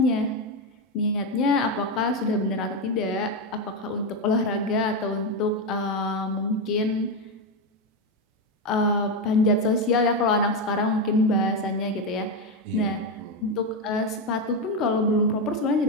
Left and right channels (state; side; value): normal; both; correlation 0.09